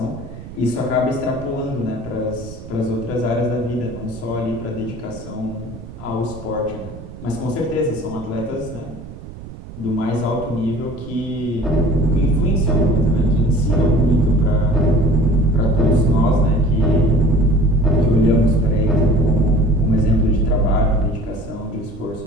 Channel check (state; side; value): noise; right; rumble, 14 dB below the sound